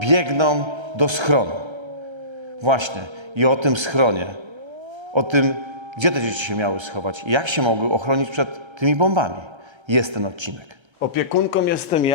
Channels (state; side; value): late; left; 1.3 ms